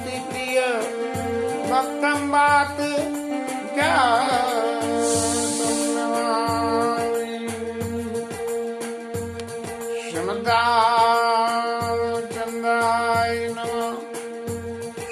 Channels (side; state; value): both; identical; correlation 1.00